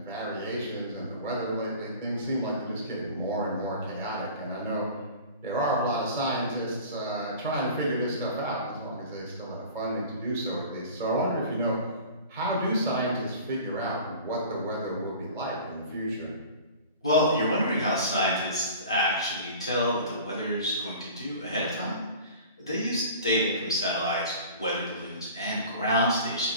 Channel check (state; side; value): inverted; both; correlation -0.42